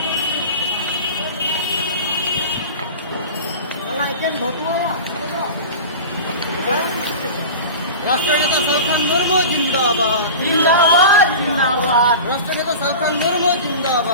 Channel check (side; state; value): both; inverted; correlation -0.32